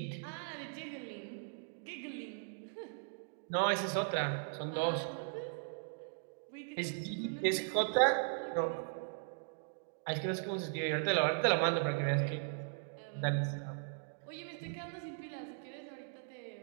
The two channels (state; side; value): silent; left; digital silence